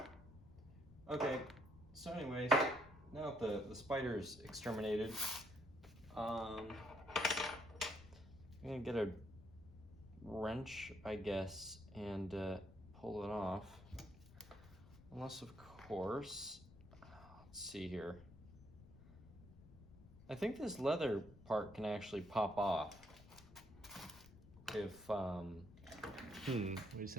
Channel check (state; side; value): noise; left; rumble, 20 dB below the sound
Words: Okay, so anyways, now that the spider's exterminated, I'm gonna get a wrench, I guess, and pull it off. Unless, of course, let's see here. I think this leather part can actually pop off. If, wait a